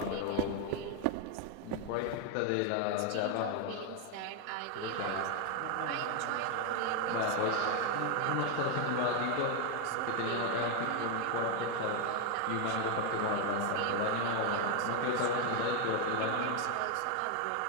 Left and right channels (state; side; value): different; both; correlation 0.01